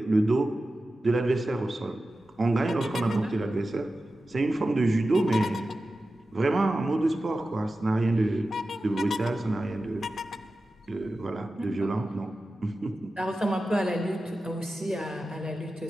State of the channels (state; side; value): normal; both; correlation 0.94